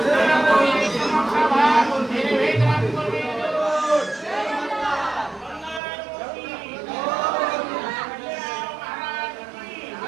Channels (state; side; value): drops out; left; at 5.8 s